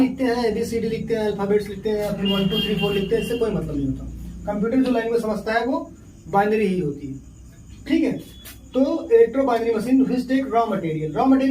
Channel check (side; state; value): both; identical; correlation 1.00